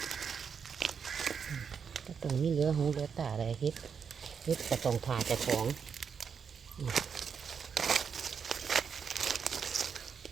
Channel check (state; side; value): quieter; left; 6.6 dB